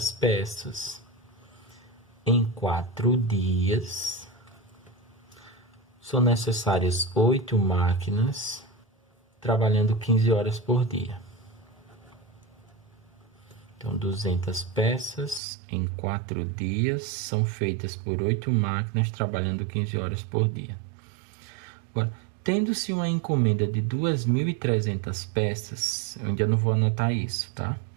peças em 4 dias. São necessárias 8 máquinas trabalhando 15 horas por dia. Então, 200 peças em 4 dias são feitas por 8 máquinas trabalhando 15 horas por dia. Agora, tendo-se uma encomenda de 2.300 peças, eu ainda não vou anotar isso, tá?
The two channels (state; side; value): drops out; left; at 15.4 s